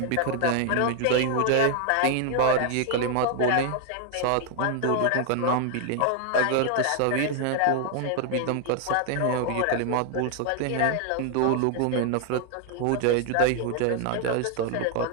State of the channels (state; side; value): different; both; correlation 0.00